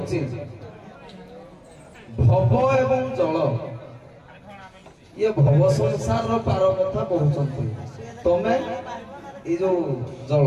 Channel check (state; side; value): identical; both; correlation 1.00